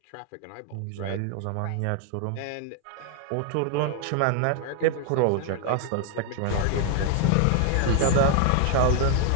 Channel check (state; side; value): different; both; correlation 0.01